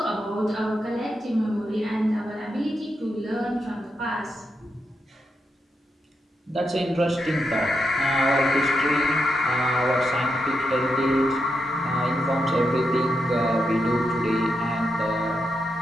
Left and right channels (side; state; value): both; normal; correlation 0.84